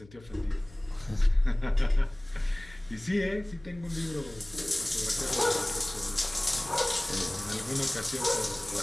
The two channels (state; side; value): noise; left; hum, 23 dB below the sound